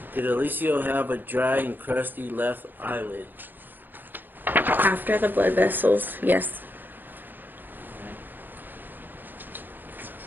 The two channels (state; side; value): late; left; 0.090 ms